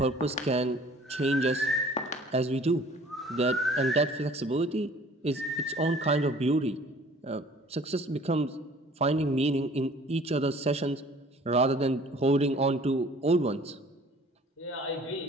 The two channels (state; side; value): normal; both; correlation 0.51